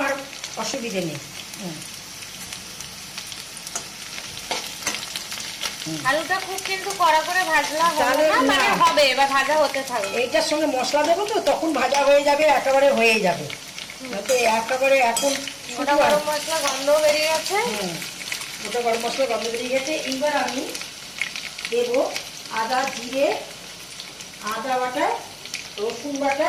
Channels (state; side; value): identical; both; correlation 1.00